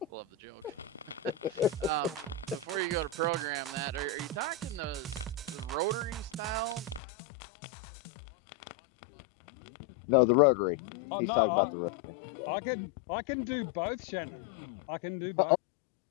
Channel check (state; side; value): drops out; right; at 7.0 s